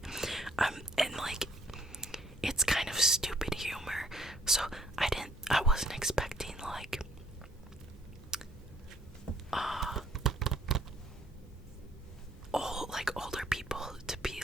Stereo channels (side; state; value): both; normal; correlation 0.64